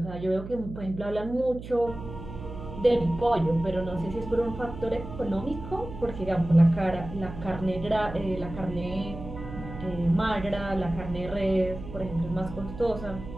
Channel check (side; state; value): right; noise; hum, 11 dB below the sound